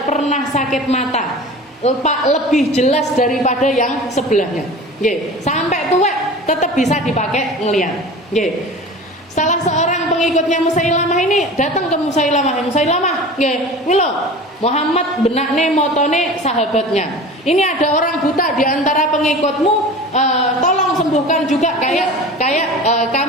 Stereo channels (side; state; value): both; normal; correlation 0.37